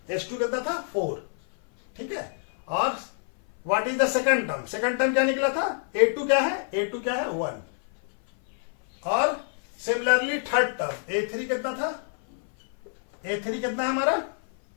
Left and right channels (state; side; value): silent; right; 56 dB below the other